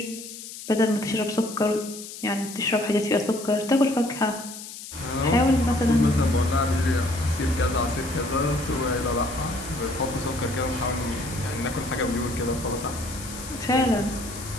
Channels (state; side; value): noise; left; hiss, 12 dB below the sound